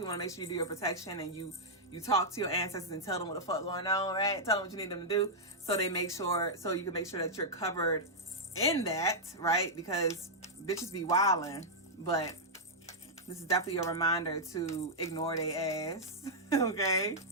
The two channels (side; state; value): both; normal; correlation -0.07